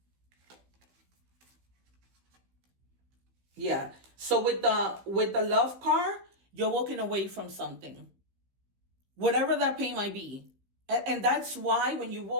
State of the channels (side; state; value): left; late; 15 ms